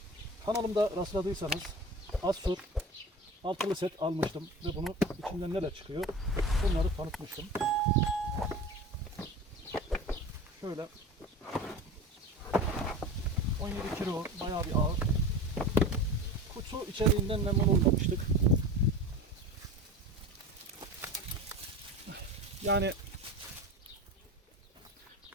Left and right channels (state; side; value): normal; both; correlation 0.33